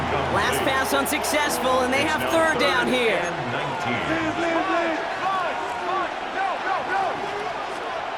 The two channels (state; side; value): identical; both; correlation 1.00